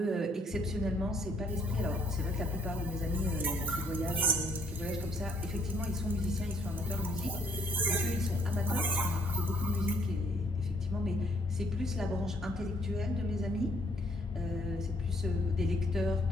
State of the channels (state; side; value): normal; both; correlation 0.65